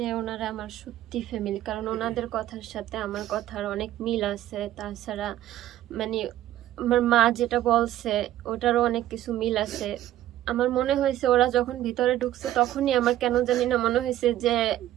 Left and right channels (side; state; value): left; quieter; 13.3 dB